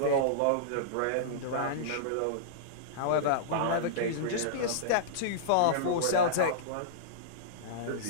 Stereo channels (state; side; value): different; both; correlation -0.03